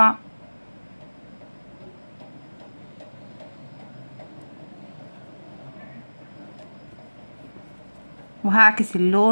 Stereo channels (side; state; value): both; inverted; correlation -1.00